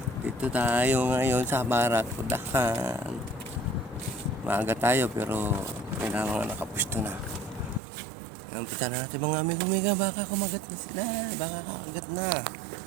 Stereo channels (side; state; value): left; drops out; at 7.8 s